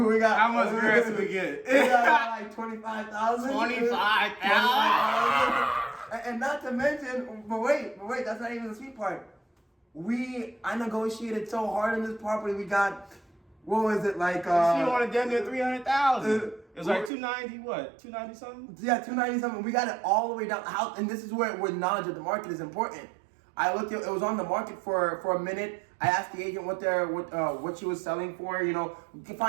how much grants we get? We got like 25,000. 25,000. And not to mention, but wait, that's not even the sweet part. I negotiated so hard on this property. We got, what was it, like, she wanted damn near 300,000. It was like 290, what? 290 something? Yeah, 290 something. We got it all the way down. And this is where knowledge of the market is important. I looked at it was on the market for a minute. I asked the agent what she was selling for, you know, to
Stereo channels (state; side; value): drops out; left; at 17.1 s